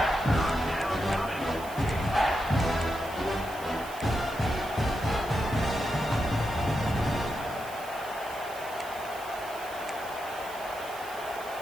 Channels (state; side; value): noise; right; hiss, 17 dB below the sound